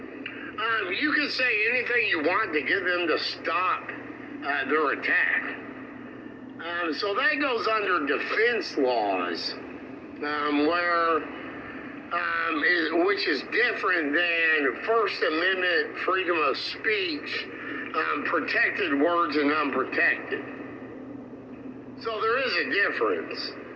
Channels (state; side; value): identical; both; correlation 1.00